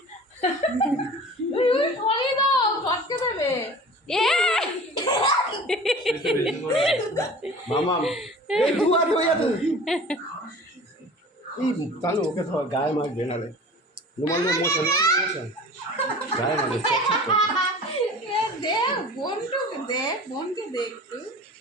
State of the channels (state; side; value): normal; both; correlation 0.41